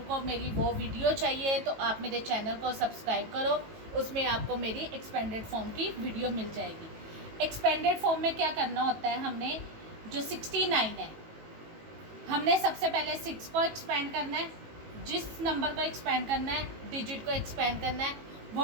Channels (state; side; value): late; left; 18 ms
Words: मेरी वो वीडियो चाहिए तो आप मेरे चैनल को सब्सक्राइब करो, उसमें आपको मेरी एक्सपेंडेड फॉर्म की वीडियो मिल जाएगी। एक्सपेंडेड फॉर्म में क्या करना होता है, हमने जो 69 है, हमने सबसे पहले 6 को एक्सपेंड करना है, जिस नंबर को एक्सपेंड करना है, डिजिट को एक्सपेंड करना है,